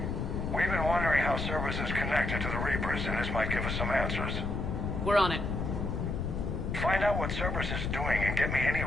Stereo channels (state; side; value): noise; left; rumble, 2 dB below the sound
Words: We've been wondering how Cerberus is connected to the Reapers, and this might give us some answers. We're on it. Find out what Cerberus is doing and get me any